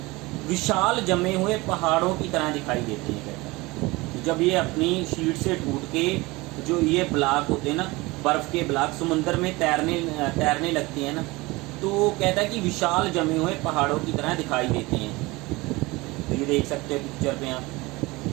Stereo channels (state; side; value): quieter; left; 22.4 dB